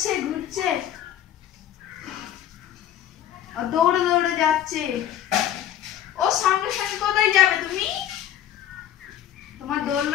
ঘুরছে, দৌড়ে দৌড়ে যাচ্ছে। ও সঙ্গে সঙ্গে কোথায় যাবে তুমি? তোমার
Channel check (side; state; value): right; quieter; 11.0 dB